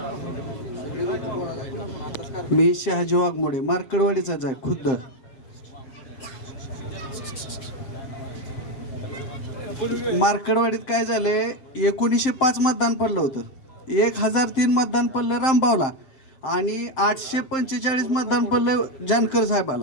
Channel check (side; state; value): right; late; 7.6 ms